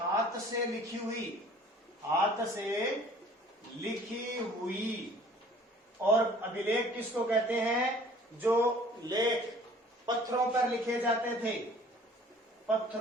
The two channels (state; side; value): normal; both; correlation 0.51